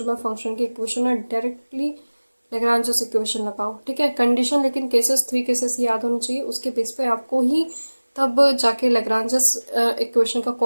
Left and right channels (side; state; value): both; inverted; correlation -1.00